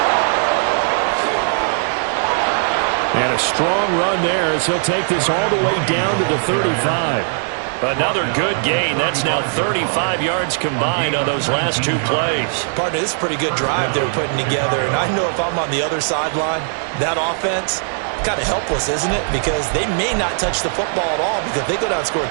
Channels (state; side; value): silent; left; digital silence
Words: And a strong run there as he'll take this all the way down to the 35. Another good gain. That's now 35 yards combined on those last 2 plays. Partner, this is a pretty good drive they're putting together. And I know if I'm on the other sideline, that offense, kind of helpless, isn't it? Because they may not touch the football at all, because if they go down and score a